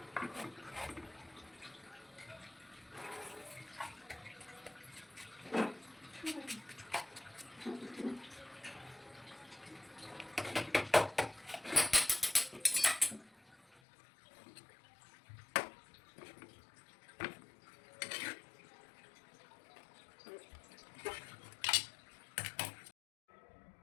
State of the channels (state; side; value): drops out; right; at 13.8 s